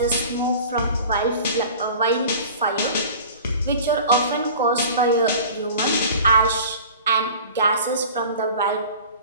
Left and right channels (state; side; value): inverted; both; correlation -0.41